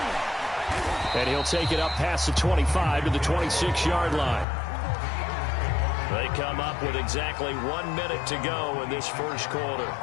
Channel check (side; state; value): right; drops out; at 4.5 s